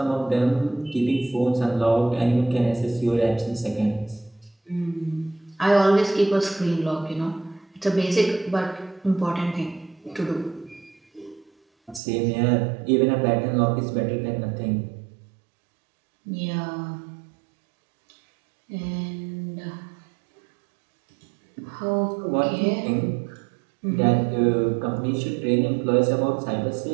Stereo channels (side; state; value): left; drops out; at 12.0 s